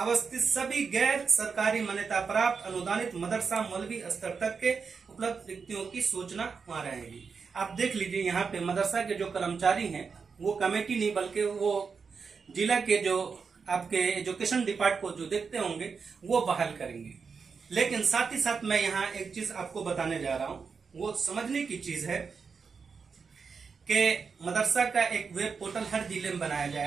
सभी गैर सरकारी मान्यता प्राप्त अनुदानित मदरसा मौलवी स्तर तक के उपलब्ध रिक्तियों की सूचना वहां रहेगी। आप देख लीजिए, यहाँ पे मदरसा के जो कर्मचारी हैं वो कमेटी नहीं बल्कि वो जिला के जो आपके एजुकेशन डिपार्टमेंट को जो देखते होंगे वो बहाल करेंगे। लेकिन साथ ही साथ मैं यहाँ एक चीज आपको बताने जा रहा हूँ, वो समझने की चीज है कि मदरसा का एक वेब पोर्टल हर जिले में बनाया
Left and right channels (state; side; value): quieter; left; 5.5 dB